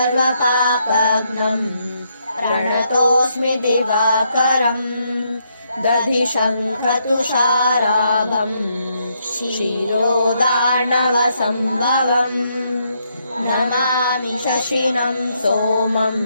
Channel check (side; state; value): both; inverted; correlation -0.76